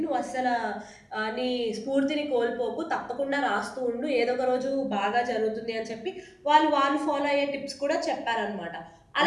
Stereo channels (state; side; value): identical; both; correlation 1.00